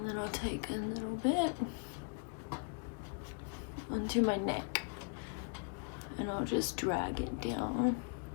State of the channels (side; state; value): right; quieter; 38.7 dB